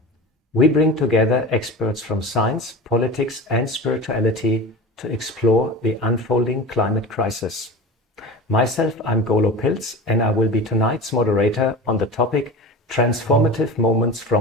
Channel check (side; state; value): both; normal; correlation 0.32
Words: We bring together experts from science, politics and spirituality to explore the unfolding climate crisis. Myself, I'm Golo Pilz, and I will be tonight's moderator on the topic Transformative Moments